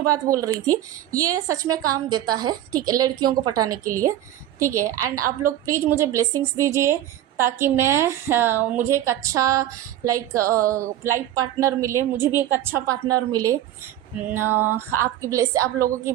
बात बोल रही थी, ये सच में काम देता है, ठीक है, लड़कियों को पटाने के लिए, ठीक है। एंड आप लोग प्लीज़ मुझे ब्लेसिंग्स दीजिए ताकि मुझे एक अच्छा लाइफ पार्टनर मिले, मुझे भी एक अच्छा पार्टनर मिले। आप लोगों की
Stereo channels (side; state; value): left; quieter; 12.5 dB